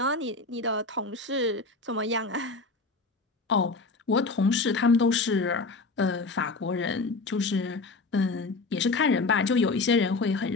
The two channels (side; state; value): right; quieter; 3.7 dB